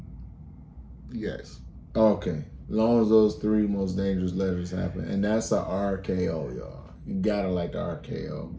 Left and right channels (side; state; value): both; identical; correlation 1.00